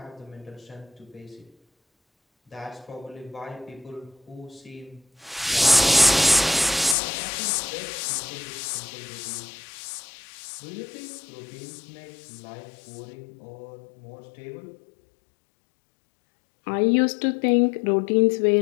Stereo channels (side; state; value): right; drops out; at 7.0 s